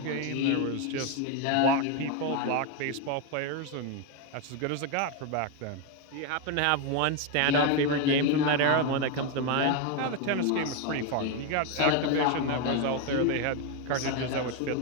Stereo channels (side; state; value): both; different; correlation 0.02